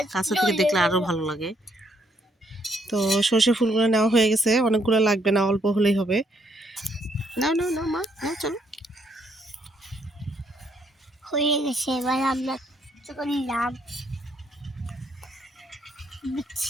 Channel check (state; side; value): normal; both; correlation 0.72